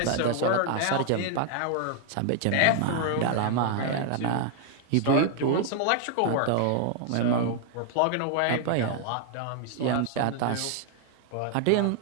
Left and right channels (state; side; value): different; both; correlation 0.00